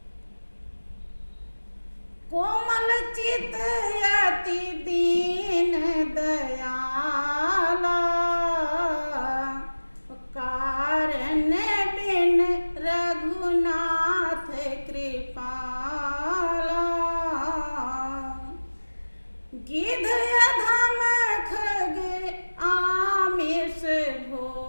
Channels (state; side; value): inverted; both; correlation -1.00